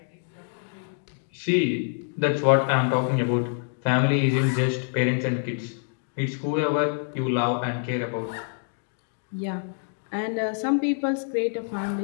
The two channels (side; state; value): right; silent; 60 dB below the other